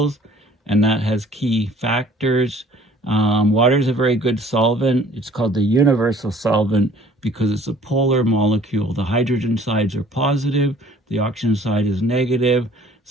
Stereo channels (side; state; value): both; normal; correlation 0.53